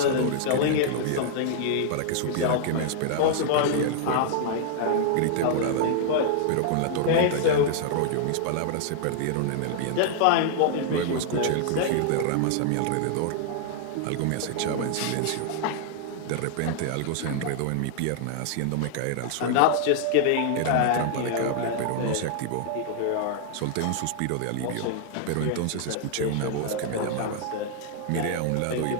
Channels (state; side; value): different; both; correlation -0.01